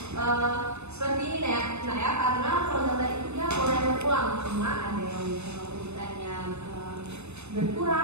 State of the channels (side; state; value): left; late; 0.81 ms